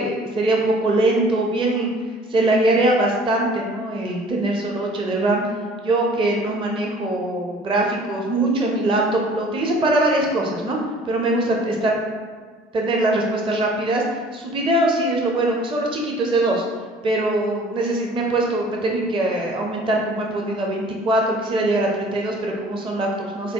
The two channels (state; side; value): normal; both; correlation 0.51